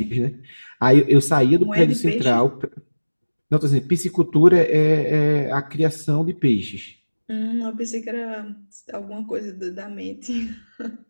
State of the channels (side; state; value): both; inverted; correlation -1.00